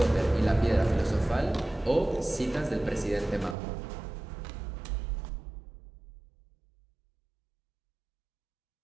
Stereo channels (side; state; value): left; drops out; at 3.6 s